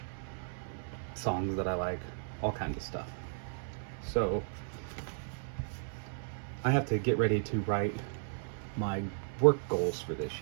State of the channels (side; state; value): left; silent; 55 dB below the other